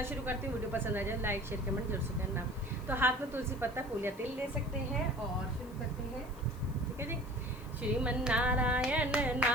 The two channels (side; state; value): left; noise; hiss, 24 dB below the sound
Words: शुरू करती हूँ। वीडियो पसंद आ जाए लाइक शेयर कमेंट जरूर से करना। तो हाथ में तुलसी पत्ता फूल या तेल ले सकते हैं और शुरू करते हैं। ठीक है जी। श्रीमन नारायण